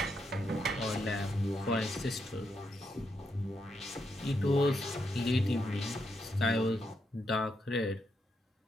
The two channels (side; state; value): both; normal; correlation 0.81